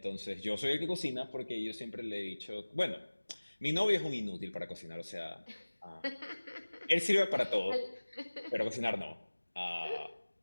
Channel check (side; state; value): both; inverted; correlation -1.00